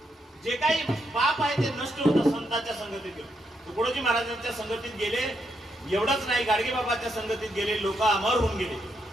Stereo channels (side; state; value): both; normal; correlation 0.79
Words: जे काही पाप आहे ते नष्ट होतं संतांच्या संगतीत. तुकडोजी महाराजांच्या संगतीत गेले, एवढंच नाही गाडगे बाबाच्या संगतीत गेले, लोक अमर होऊन गेले,